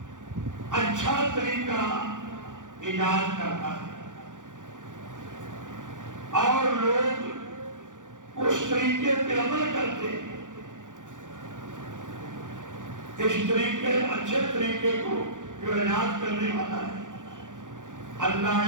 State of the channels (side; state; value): left; late; 0.87 ms